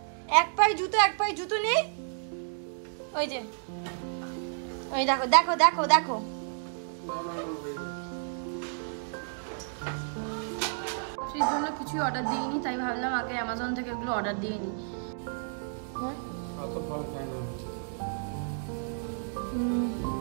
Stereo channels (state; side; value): silent; left; digital silence